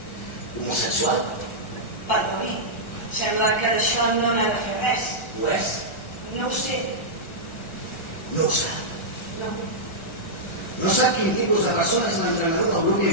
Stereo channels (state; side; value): late; right; 1.4 ms